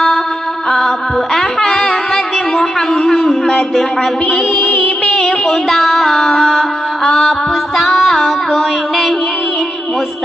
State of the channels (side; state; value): both; normal; correlation 0.86